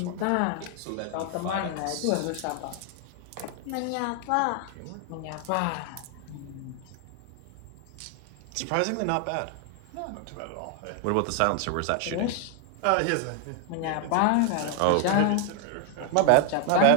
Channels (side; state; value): both; different; correlation 0.00